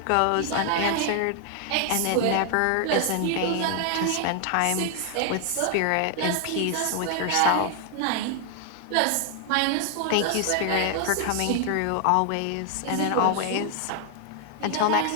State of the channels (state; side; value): different; both; correlation 0.00